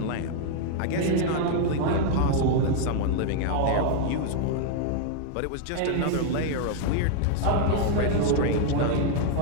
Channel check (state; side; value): different; both; correlation 0.00